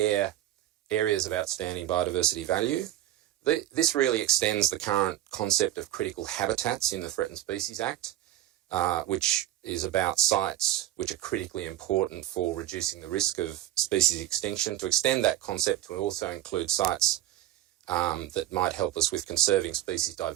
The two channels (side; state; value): left; quieter; 13.7 dB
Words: areas of outstanding biodiversity value. This really extends the current concept of critical habitats in the Threatened Species Act, which is about sites which are critically important for reducing the risk of species extinction, to extend that concept to also include sites that might help us with conserving species